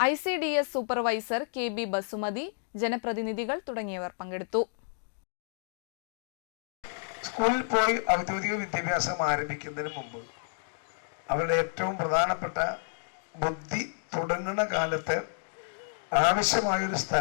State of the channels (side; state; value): right; silent; digital silence